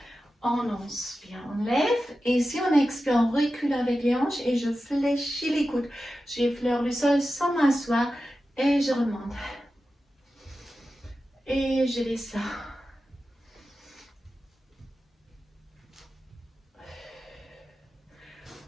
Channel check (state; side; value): normal; both; correlation 0.92